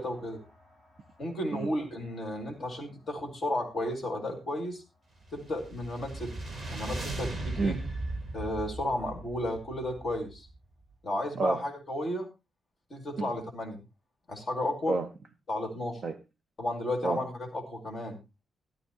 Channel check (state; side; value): normal; both; correlation 0.81